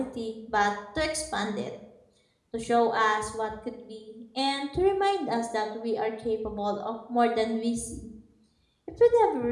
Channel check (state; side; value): identical; both; correlation 1.00